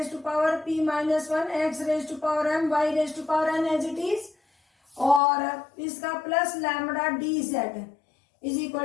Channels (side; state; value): right; drops out; at 5.2 s